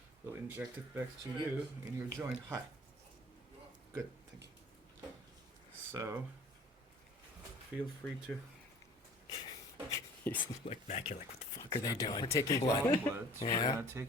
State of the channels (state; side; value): normal; both; correlation 0.49